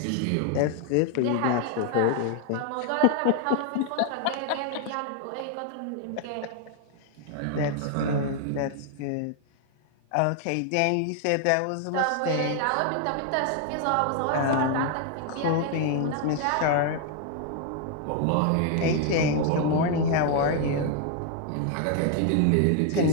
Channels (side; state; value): both; different; correlation 0.00